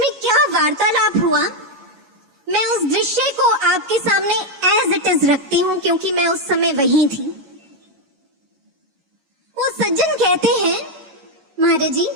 क्या वार्तालाप हुआ, मैं उस दृश्य को आपके सामने एज इट इज रखती हूँ क्योंकि मैं उस समय वहीं थी। वो सज्जन कहते हैं, महाराज जी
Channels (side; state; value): left; late; 11 ms